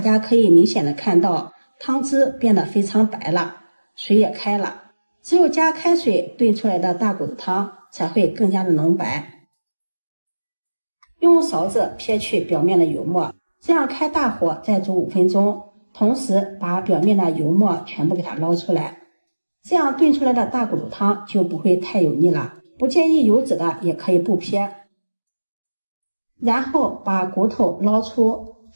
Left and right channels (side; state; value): both; inverted; correlation -1.00